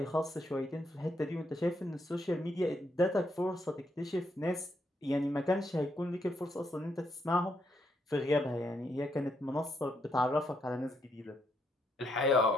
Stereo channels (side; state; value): both; normal; correlation 0.77